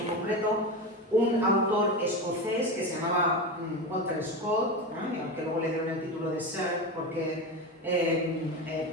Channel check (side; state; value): both; normal; correlation 0.21